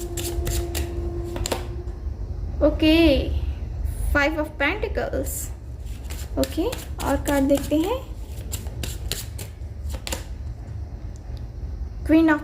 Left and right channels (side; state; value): both; identical; correlation 1.00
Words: okay. 5 of pentacles, okay. और card देखते हैं, queen of